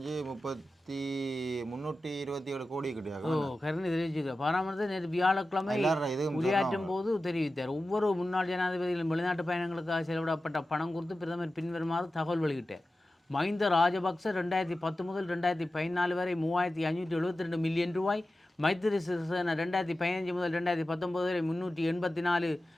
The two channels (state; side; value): normal; both; correlation 0.94